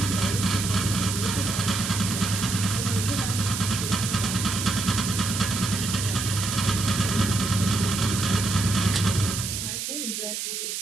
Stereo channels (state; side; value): noise; right; hiss, 4 dB below the sound